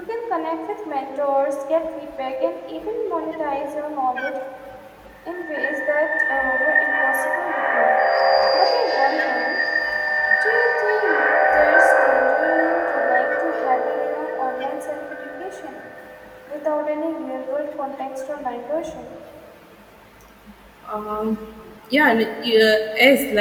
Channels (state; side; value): identical; both; correlation 1.00